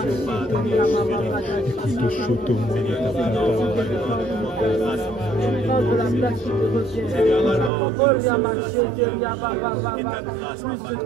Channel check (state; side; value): drops out; left; at 7.7 s